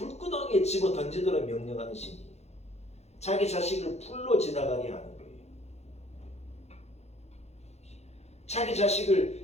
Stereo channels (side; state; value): right; late; 0.31 ms